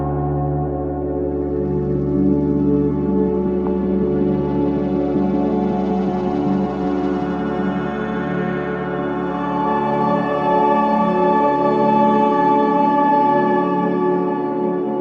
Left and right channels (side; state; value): both; identical; correlation 1.00